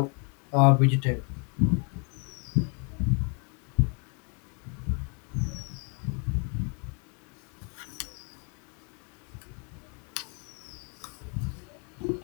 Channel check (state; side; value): quieter; right; 37.1 dB